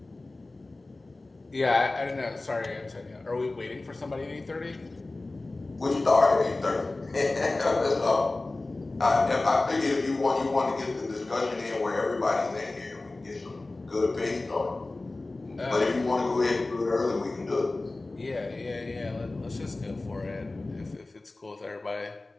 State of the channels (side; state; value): right; quieter; 3.1 dB